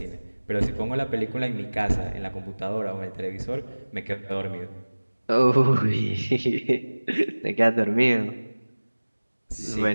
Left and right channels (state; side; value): inverted; both; correlation -1.00